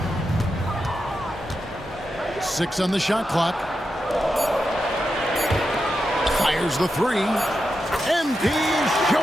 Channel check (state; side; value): normal; both; correlation 0.88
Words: 6 on the shot clock. Fires the three. MP is